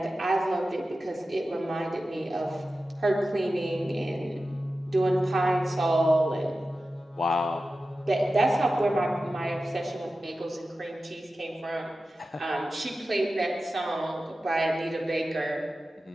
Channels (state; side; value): normal; both; correlation 0.94